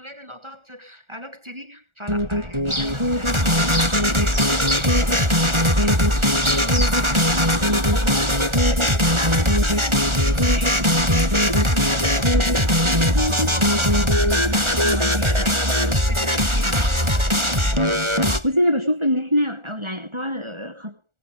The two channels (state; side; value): late; left; 1.4 ms